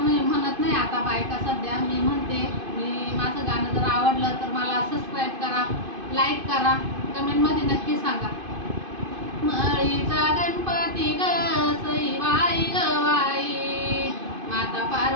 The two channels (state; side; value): late; left; 2.5 ms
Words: म्हणत नाही आता बायका सध्या, मी म्हणते. माझं गाणं जर आवडलं तर मला सबस्क्राईब करा, लाईक करा, कमेंटमध्ये नक्की सांगा. मळीचा गणपती ग सईबाई ग बाई, माता